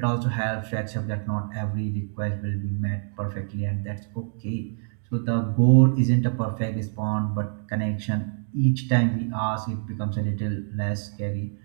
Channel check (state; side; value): silent; left; digital silence